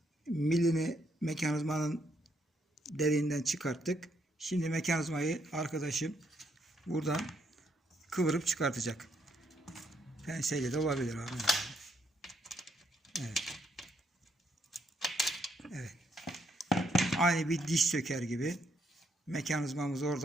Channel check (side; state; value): both; normal; correlation 0.74